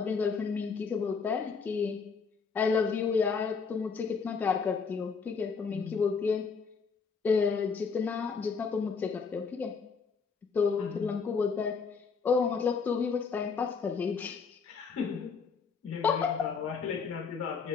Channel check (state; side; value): quieter; right; 5.4 dB